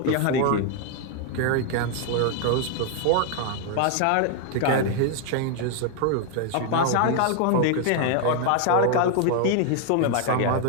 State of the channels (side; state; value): both; different; correlation 0.00